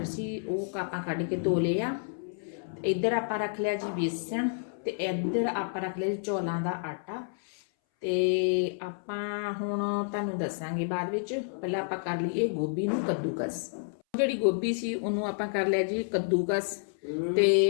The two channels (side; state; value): right; silent; 58 dB below the other